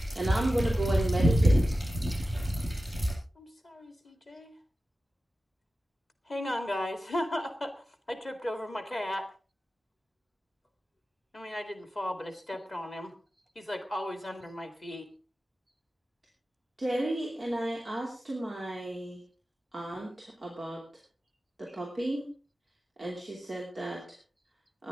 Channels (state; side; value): normal; both; correlation 0.94